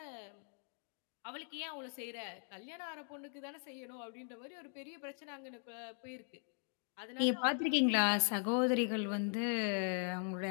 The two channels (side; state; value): right; silent; 51 dB below the other